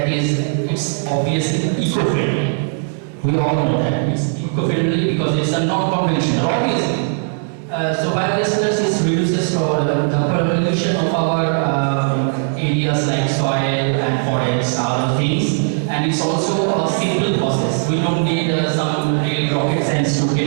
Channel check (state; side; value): silent; left; 67 dB below the other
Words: is, it's obviously eco-friendly. We all know that it's eco-friendly because it's a non-conventional, obviously. So biogas reduces the pollution of our areas like soil and forests, other things, and it's also a simple process. We don't need some real rocket science to get